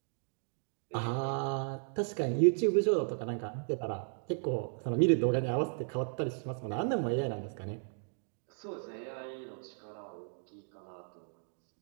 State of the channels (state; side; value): silent; left; 54 dB below the other